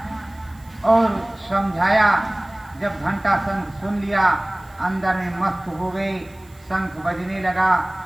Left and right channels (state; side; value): noise; right; hiss, 29 dB below the sound